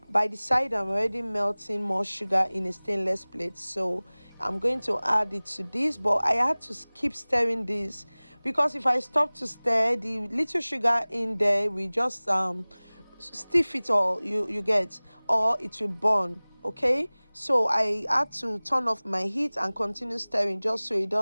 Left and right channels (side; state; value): both; inverted; correlation -1.00